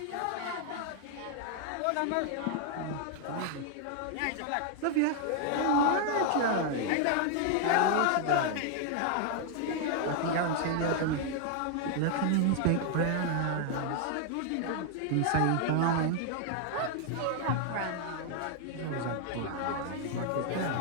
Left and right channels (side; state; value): both; different; correlation 0.00